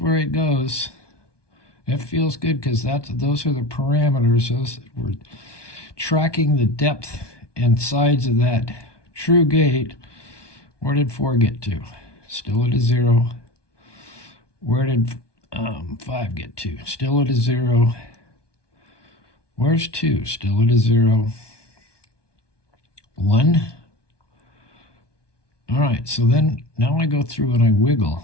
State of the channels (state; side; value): late; right; 1.2 ms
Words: it goes. It feels good because those are the parameters. We're tracking the depth and sides of that true gate. Where did 4 get to? Still at a 0. Where did 5 get to? Still at a 0. Where's 2? Still at a 0. 1. All right, so then now I go through and I